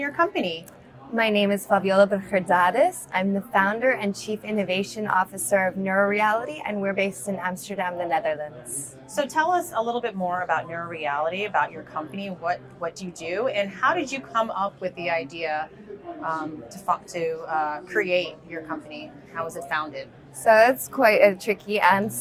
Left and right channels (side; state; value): both; identical; correlation 1.00